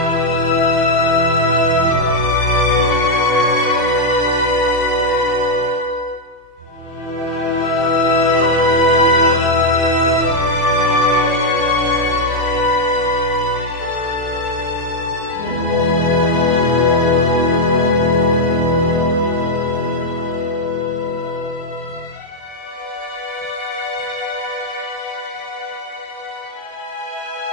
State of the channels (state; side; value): late; right; 6.4 ms